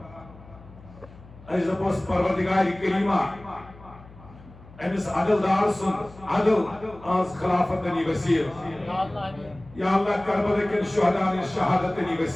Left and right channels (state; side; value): noise; left; hum, 21 dB below the sound